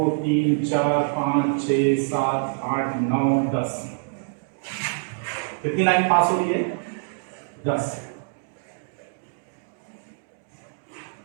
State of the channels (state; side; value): silent; left; digital silence